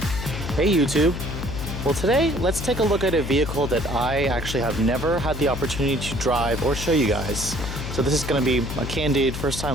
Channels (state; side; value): noise; left; hum, 6 dB below the sound